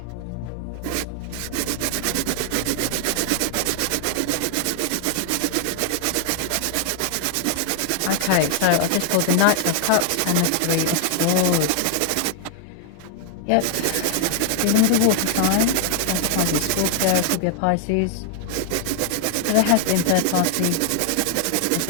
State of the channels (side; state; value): both; different; correlation 0.00